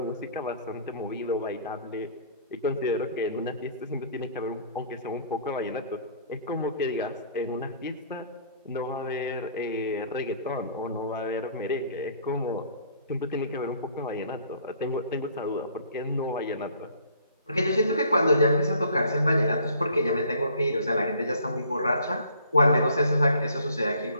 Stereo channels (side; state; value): both; inverted; correlation -0.56